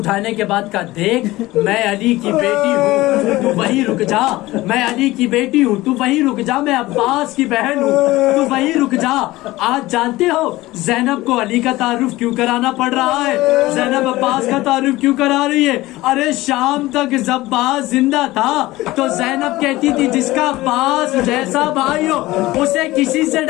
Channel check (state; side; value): quieter; right; 18.4 dB